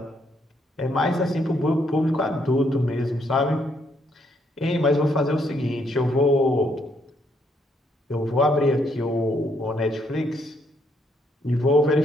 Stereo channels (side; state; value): both; normal; correlation 0.72